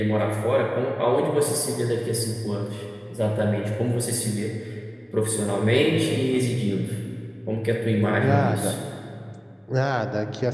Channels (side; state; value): both; identical; correlation 1.00